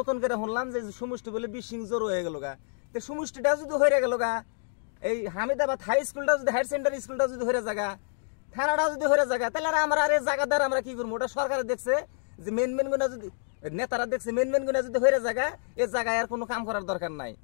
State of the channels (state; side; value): silent; right; digital silence